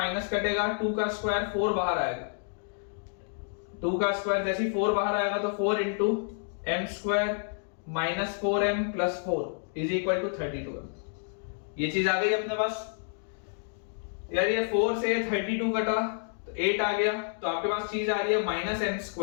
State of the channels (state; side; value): silent; right; digital silence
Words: कटेगा, 2 का स्क्वायर 4 बाहर आएगा, 2 का स्क्वायर जैसे ही 4 बाहर आएगा तो 4 into m square minus 4m plus 4 is equal to 32m। ये चीज आ गई अपने पास। यार ये 4 से 32 कटा तो 8 आ गया, तो आपके पास चीज आ रही है -m